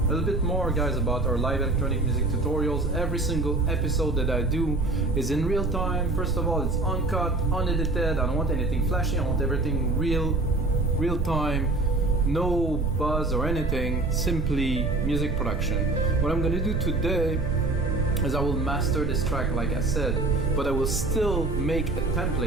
little bit more, guys, about our live electronic music tutorials. Every single episode that I do is in real time. First of all, it's uncut, unedited. I don't want anything flashy. I want everything real time. No buzz or anything, simply music production. What I'm gonna do today is I will master this track like I said, but I will still make a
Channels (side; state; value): right; noise; rumble, 2 dB below the sound